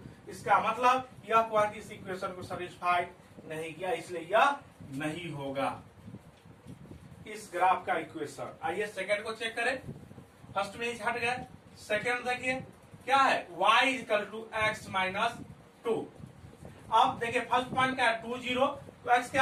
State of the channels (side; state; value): both; identical; correlation 1.00